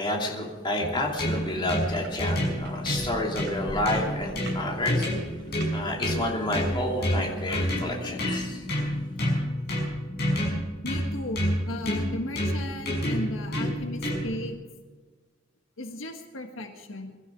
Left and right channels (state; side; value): normal; both; correlation 0.53